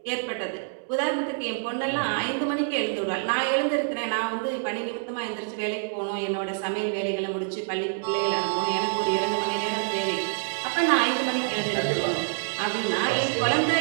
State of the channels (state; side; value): silent; left; digital silence